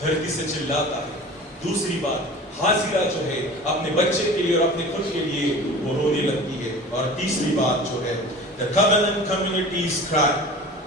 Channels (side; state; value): both; normal; correlation 0.39